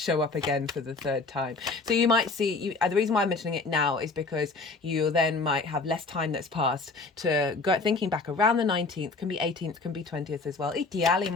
up again for the 3rd time. So you might see, the reason why I'm mentioning it now is because you then might have less time that's passed to go thinking back around the 19th, can be 18th, can be 20th as well,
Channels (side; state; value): right; quieter; 3.8 dB